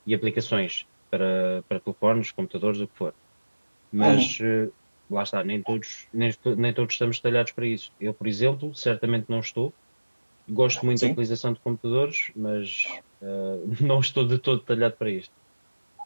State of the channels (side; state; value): both; inverted; correlation -1.00